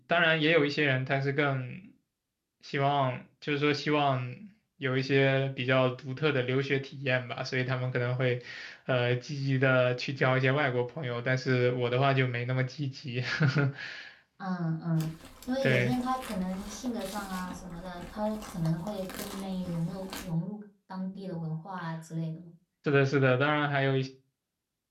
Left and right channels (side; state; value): both; identical; correlation 1.00